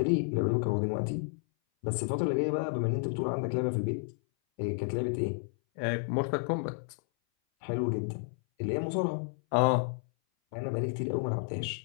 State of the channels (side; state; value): right; silent; 57 dB below the other